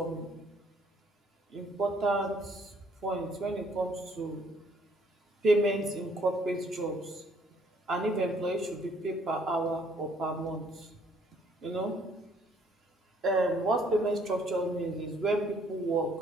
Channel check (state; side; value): normal; both; correlation 0.64